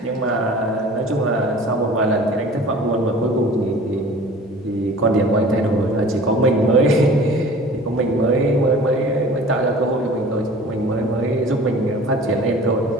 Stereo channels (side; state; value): both; normal; correlation 0.44